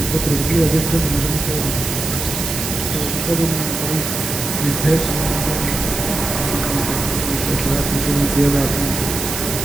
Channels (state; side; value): noise; right; hiss, 4 dB below the sound